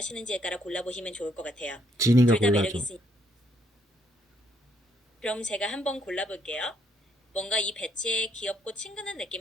따라 골라보시면 좋을 것 같아요. 진이가 둘 다 매력 골라줘. 있으니 그럼 제가 한번 골라볼게요. 뭔가 이 배지의 귀엽고 친근한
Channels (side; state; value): both; normal; correlation 0.72